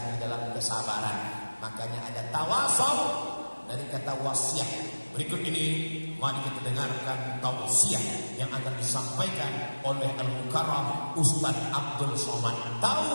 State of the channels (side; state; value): both; inverted; correlation -1.00